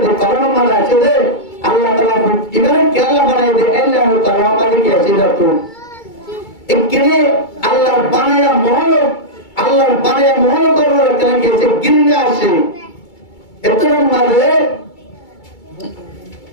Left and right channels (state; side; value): late; right; 2.3 ms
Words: যে কলম মারা আছে যে আল্লাহ তাআলা ইমান কে আল্লাহ বানাই দে আল্লাহ তাআলা মাঝে কি আছে তো একরে আল্লাহর বানায়া মহল করব কেন কি আছে গিন্নে আসে এত নম্বরে